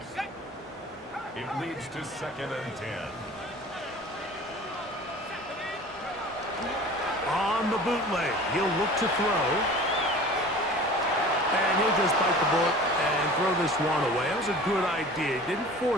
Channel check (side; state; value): both; normal; correlation 0.41